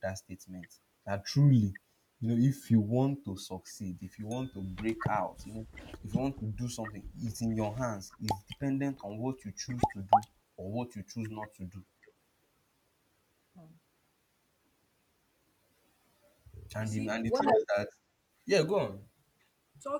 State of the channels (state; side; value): identical; both; correlation 1.00